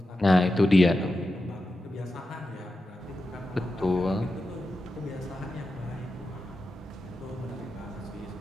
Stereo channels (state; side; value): normal; both; correlation 0.90